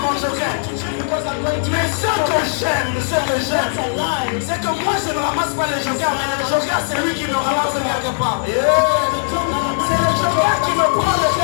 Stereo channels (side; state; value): right; silent; digital silence